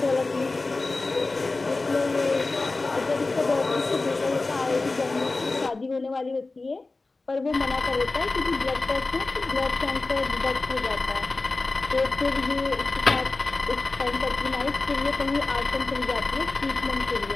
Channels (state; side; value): quieter; right; 3.4 dB